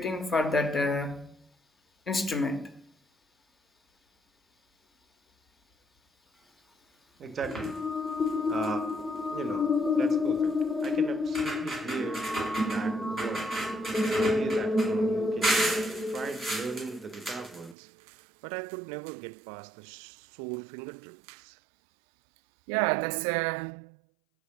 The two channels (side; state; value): left; drops out; at 17.8 s